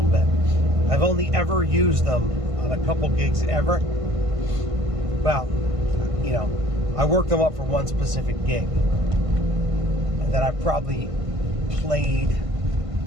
bit. I've only ever used them on a couple gigs ever. Well, you know, I worked them up for one specific gig, and then I probably played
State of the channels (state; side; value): late; left; 1.5 ms